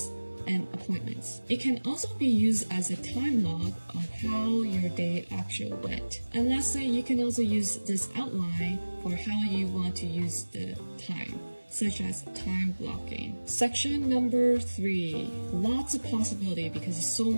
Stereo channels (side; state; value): both; inverted; correlation -1.00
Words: and appointments. It can also be used as a time log of how your day actually went. And lastly, you can also use this outline for how you want to use the time, such as time blocking. Section number 3. Lots of possibility because there's so